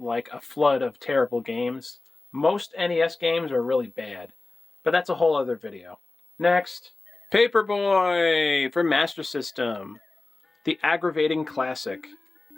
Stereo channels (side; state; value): right; quieter; 3.3 dB